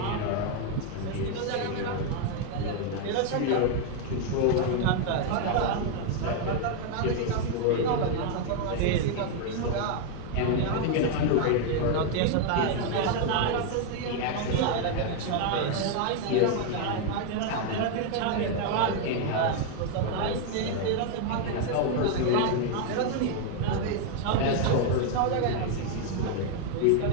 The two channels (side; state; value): both; different; correlation 0.00